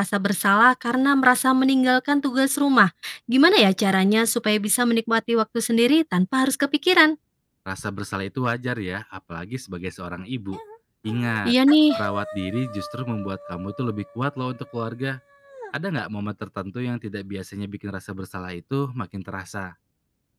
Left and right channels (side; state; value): both; identical; correlation 1.00